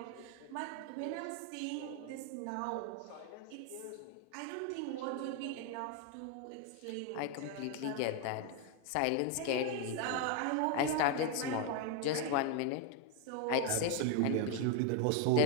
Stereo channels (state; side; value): different; both; correlation 0.01